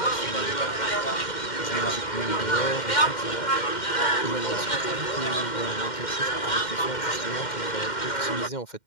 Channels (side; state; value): right; late; 2.1 ms